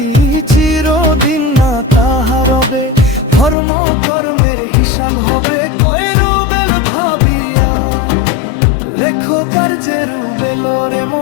চিরদিন না তাহা রবে। ধর্ম কর্মের হিসাব হবে কয়রো বেল ভাবিয়া। লেখো কার্যের বেল রে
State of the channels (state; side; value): drops out; right; at 3.6 s